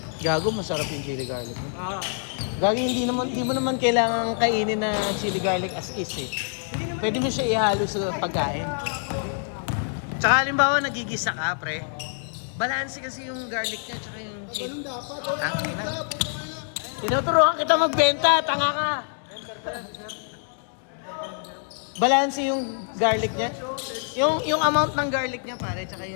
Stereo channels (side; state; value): right; silent; digital silence